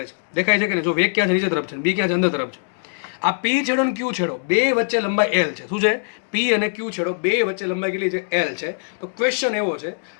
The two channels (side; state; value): right; silent; digital silence